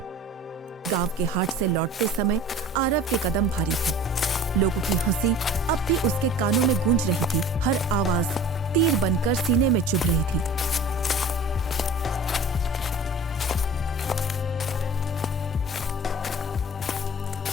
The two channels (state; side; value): normal; both; correlation 0.41